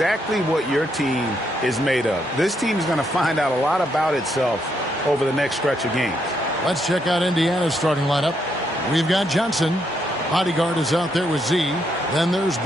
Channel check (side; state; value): both; normal; correlation 0.77